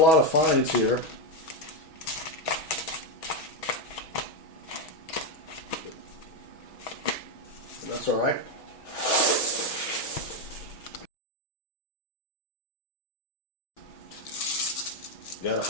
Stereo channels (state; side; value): late; right; 6.2 ms